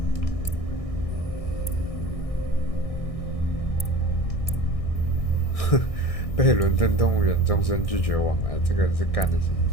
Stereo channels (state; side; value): late; right; 1.6 ms